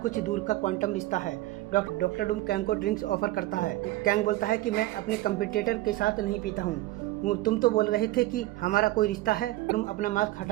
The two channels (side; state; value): left; quieter; 17.4 dB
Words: दूर का क्वांटम रिश्ता है। डॉक्टर डूम कैंग को ड्रिंक्स ऑफर करता है। कैंग बोलता है कि मैं अपने कंपटीटर के साथ नहीं पीता हूँ। तुम तो बोल रहे थे कि हमारा कोई रिश्ता है। तुम अपना मास्क